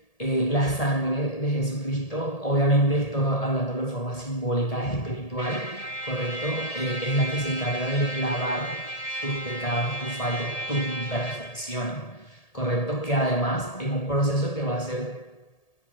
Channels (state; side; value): late; right; 1.8 ms